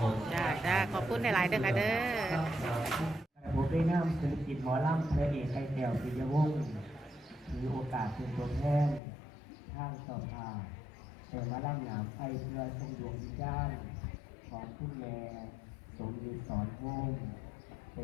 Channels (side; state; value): right; drops out; at 9.0 s